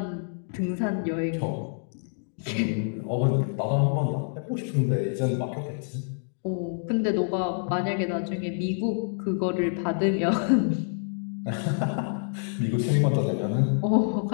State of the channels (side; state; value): right; silent; digital silence